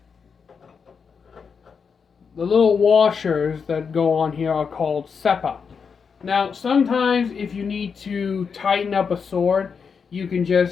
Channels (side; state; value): right; quieter; 6.0 dB